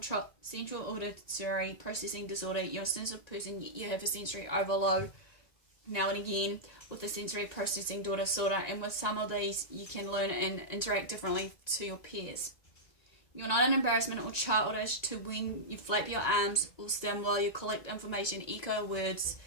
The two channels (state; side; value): late; right; 1.9 ms